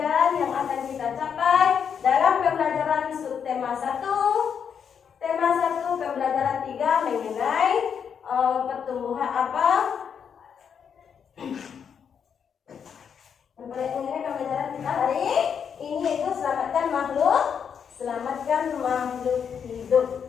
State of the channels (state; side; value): quieter; right; 7.3 dB